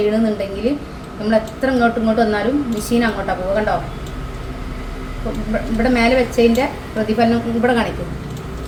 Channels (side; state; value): both; identical; correlation 1.00